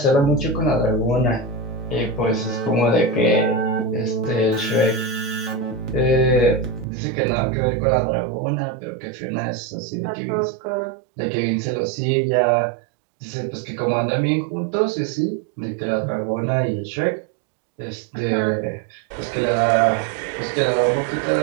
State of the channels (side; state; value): left; drops out; at 6.9 s